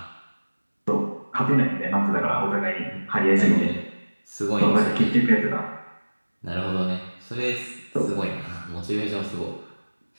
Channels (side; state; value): both; inverted; correlation -1.00